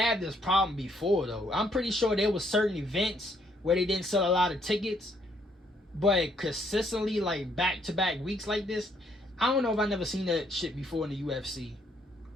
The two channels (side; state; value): both; normal; correlation 0.69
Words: this problem before though. I'm pretty sure there was certain events where they didn't sell a lot of tickets, but consistently like back-to-back weeks like this, I don't know if I've never seen that shit before in the UFC.